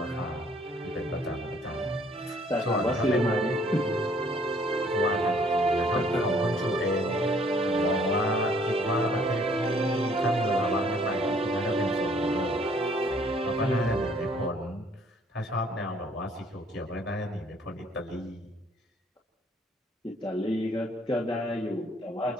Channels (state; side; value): normal; both; correlation 0.61